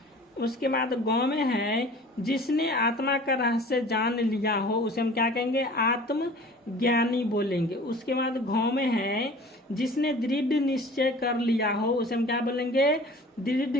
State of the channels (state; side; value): normal; both; correlation 0.45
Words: उसके बाद गौ में है जिसने आत्मा का रहस्य जान लिया हो, उसे हम क्या कहेंगे, आत्मज्ञानी बोलेंगे। उसके बाद घौ में है जिसने दृढ़ निश्चय कर लिया हो, उसे हम क्या बोलेंगे,